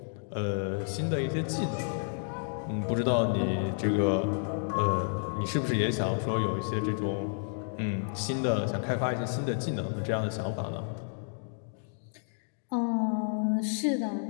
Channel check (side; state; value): right; silent; digital silence